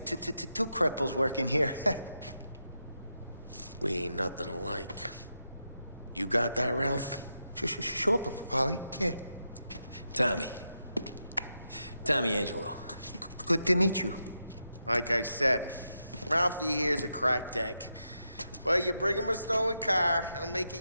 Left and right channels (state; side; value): inverted; both; correlation -0.86